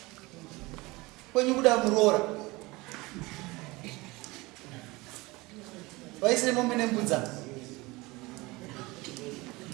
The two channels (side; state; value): left; quieter; 22.6 dB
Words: Kwenyu kuda muroora. Vaisire mombe nembudza.